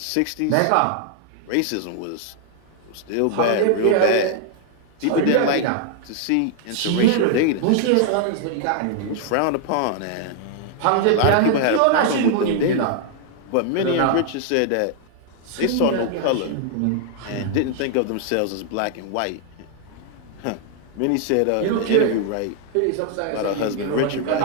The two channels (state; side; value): different; both; correlation 0.00